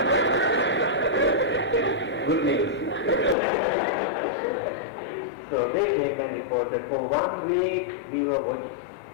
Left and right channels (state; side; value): drops out; right; at 3.4 s